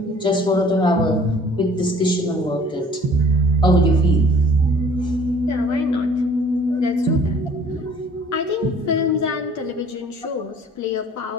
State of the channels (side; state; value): both; normal; correlation 0.52